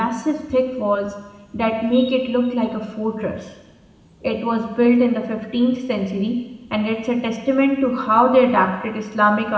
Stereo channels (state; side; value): identical; both; correlation 1.00